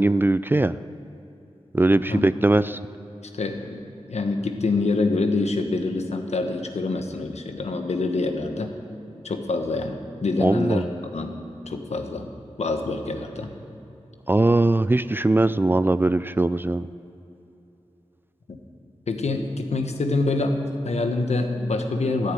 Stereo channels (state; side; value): normal; both; correlation 0.86